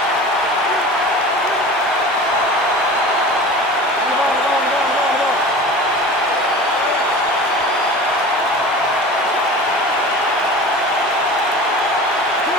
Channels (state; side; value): normal; both; correlation 0.36